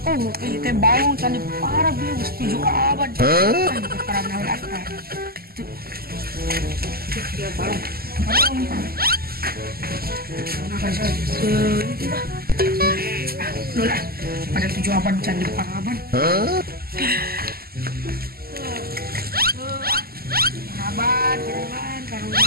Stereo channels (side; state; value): left; late; 0.44 ms